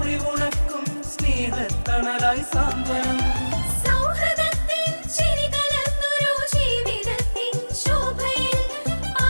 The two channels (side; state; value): both; inverted; correlation -1.00